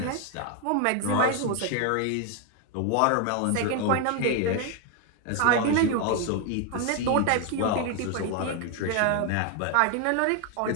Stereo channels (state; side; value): different; both; correlation 0.01